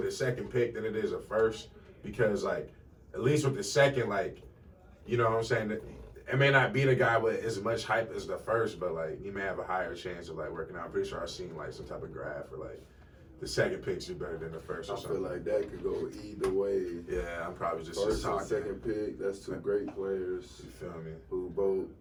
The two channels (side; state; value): both; identical; correlation 1.00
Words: a second pick than it is a first. Because, like, at least with the second, like, you know what I'm saying? It may not be the guy with as much hype as the first, but, like, you may have a higher chance of, like, working out. I'm pretty sure I've seen, like, some type of graph where, like, the second picks do better than the first or something. I feel like that could go either way. Yeah, I'm probably just First and talking. second pick, that's two great players. You feel me? Who both